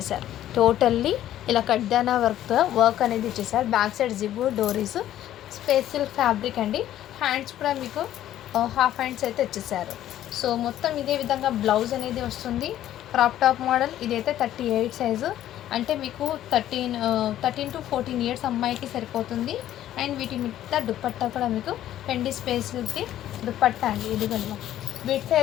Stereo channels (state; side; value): quieter; right; 12.4 dB